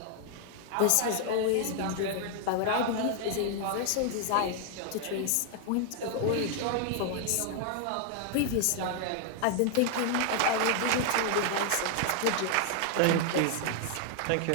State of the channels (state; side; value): different; both; correlation 0.00